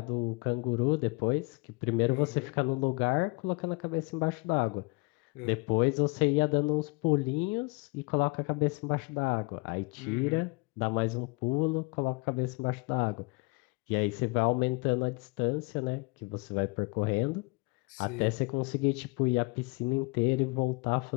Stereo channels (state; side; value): quieter; right; 27.7 dB